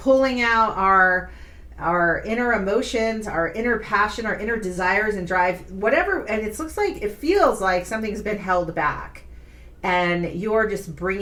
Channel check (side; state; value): both; identical; correlation 1.00